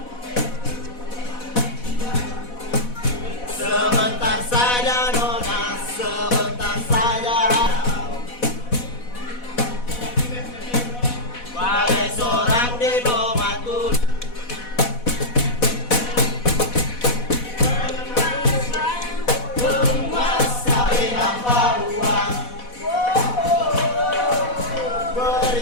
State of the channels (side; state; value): right; late; 4.1 ms